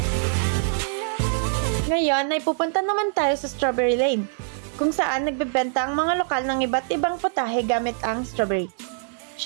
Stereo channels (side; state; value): left; silent; digital silence